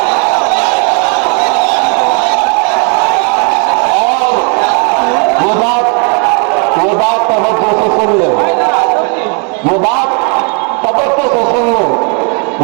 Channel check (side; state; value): left; quieter; 38.0 dB